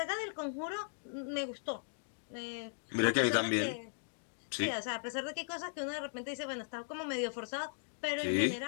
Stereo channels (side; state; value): right; silent; digital silence